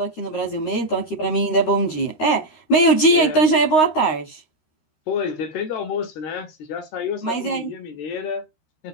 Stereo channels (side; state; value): right; late; 13 ms